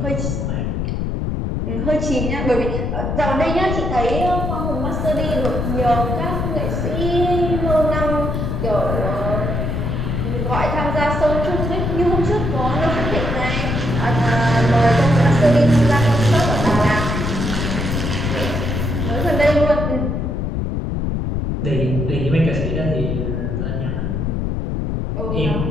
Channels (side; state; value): left; noise; rumble, 1 dB below the sound